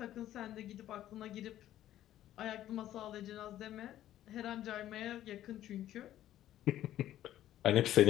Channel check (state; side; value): quieter; right; 12.8 dB